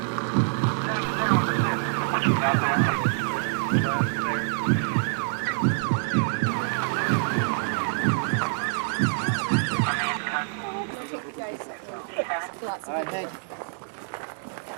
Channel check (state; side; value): silent; left; digital silence